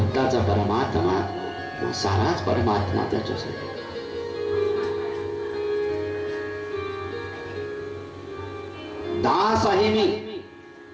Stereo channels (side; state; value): both; identical; correlation 1.00